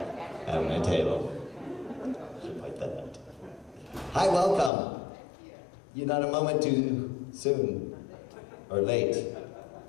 at my table. Should point that out. Hi, welcome. You're not a moment too soon or late.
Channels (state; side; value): drops out; right; at 4.7 s